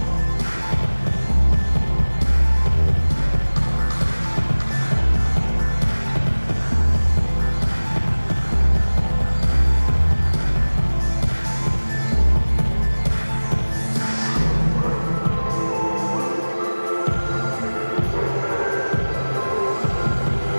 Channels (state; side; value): inverted; both; correlation -1.00